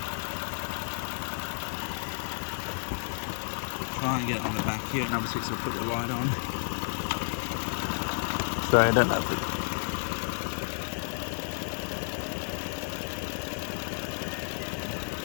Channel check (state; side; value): silent; right; digital silence